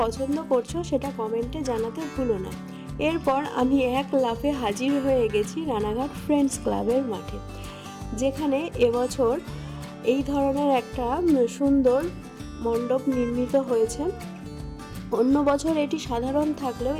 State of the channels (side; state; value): both; identical; correlation 1.00